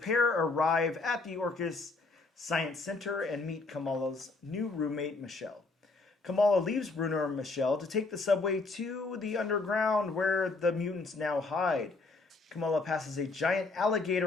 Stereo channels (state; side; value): quieter; right; 3.6 dB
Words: arrive at the Orcus Science Center and meet Kamala's new roommate, Michelle. Kamala leaves Bruno and Michelle to take the subway to the underground where the mutants now hide. Kamala passes a giant